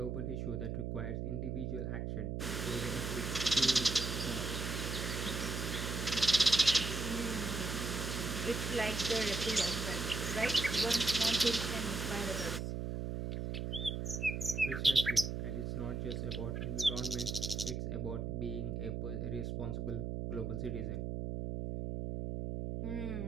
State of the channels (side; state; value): right; noise; hum, 3 dB below the sound